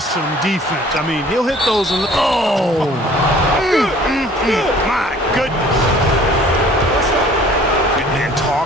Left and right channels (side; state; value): both; normal; correlation 0.52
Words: defense. I mean, he'll hit those. Oh! My goodness. And